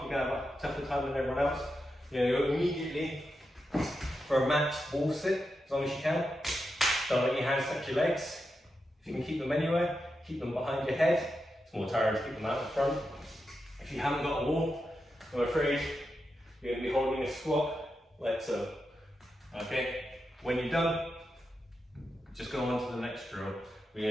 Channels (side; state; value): both; normal; correlation 0.88